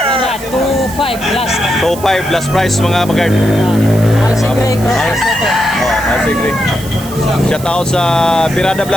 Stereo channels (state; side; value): noise; right; hiss, 15 dB below the sound